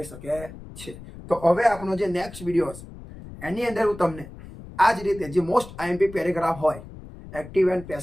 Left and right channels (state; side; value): noise; left; rumble, 15 dB below the sound